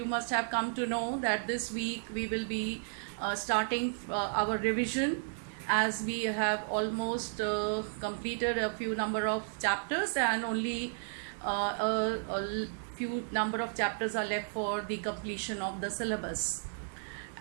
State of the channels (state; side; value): silent; left; digital silence